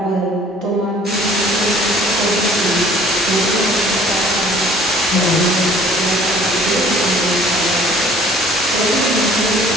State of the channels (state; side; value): normal; both; correlation 0.53